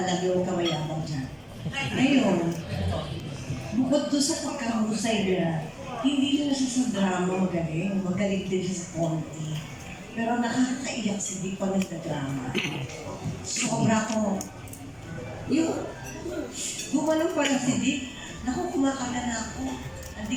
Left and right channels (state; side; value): identical; both; correlation 1.00